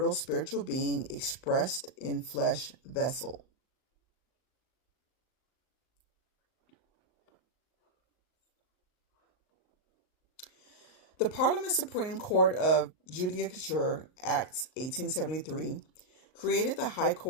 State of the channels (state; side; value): late; right; 38 ms